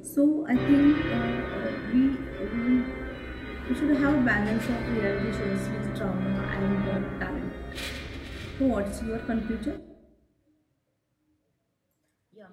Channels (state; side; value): identical; both; correlation 1.00